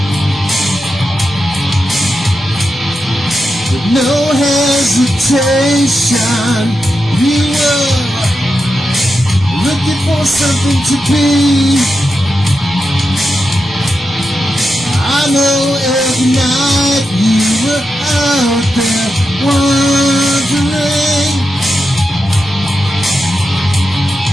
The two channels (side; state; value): both; normal; correlation 0.88